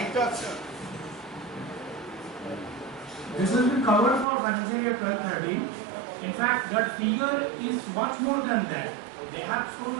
This has been covered for financial year 12-13. In fact, that figure is much more than that. They have shown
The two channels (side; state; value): left; drops out; at 4.2 s